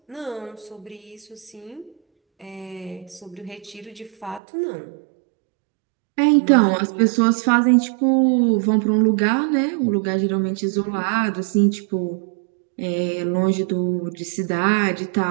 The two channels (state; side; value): drops out; left; at 4.4 s